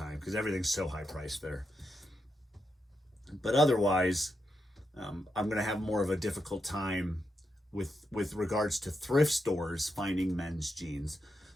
because everything's so high priced there. But otherwise, I'm going to have more of a difficult time with regards to thrift stores finding men's jeans.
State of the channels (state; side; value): normal; both; correlation 0.84